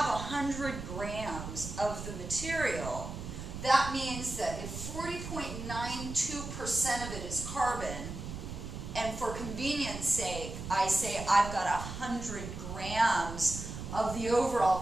100 grams of the material, that means that if 40.92% of it is carbon, and for convenience sake, I say I've got 100 grams of the overall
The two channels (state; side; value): noise; right; rumble, 8 dB below the sound